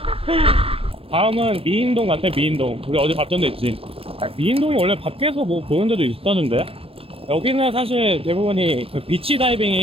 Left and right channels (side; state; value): left; late; 0.28 ms